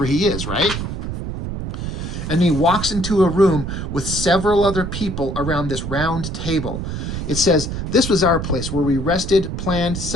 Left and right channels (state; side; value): noise; right; rumble, 5 dB below the sound